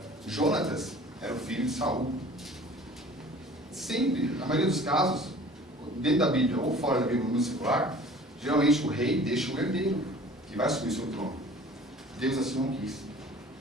Jonatas era o filho de Saul. Sempre, na maioria dos casos, dentro da Bíblia ou fora da Bíblia, no secular, geralmente o rei deixa o herdeiro, que vai assumir seu trono. Deus assim não quis.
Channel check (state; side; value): normal; both; correlation 0.47